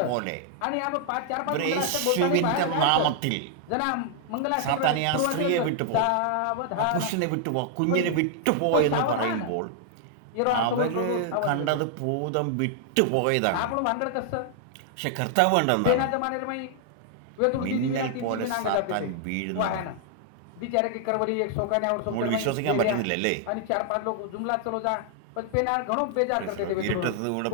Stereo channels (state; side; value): different; both; correlation 0.00